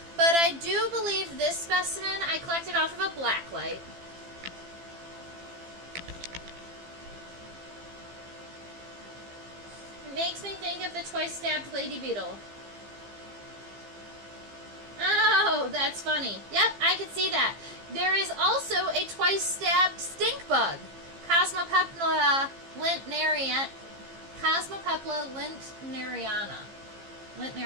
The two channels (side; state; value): left; late; 15 ms